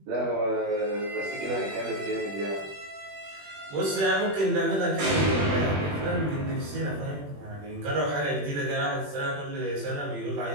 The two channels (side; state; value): left; late; 21 ms